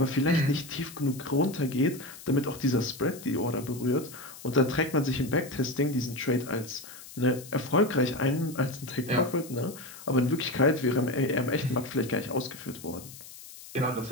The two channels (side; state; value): left; noise; hiss, 16 dB below the sound